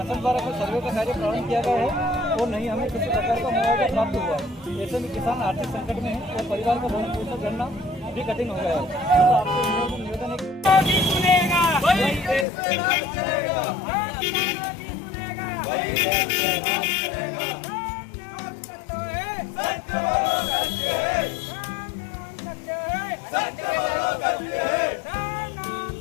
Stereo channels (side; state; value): right; drops out; at 12.5 s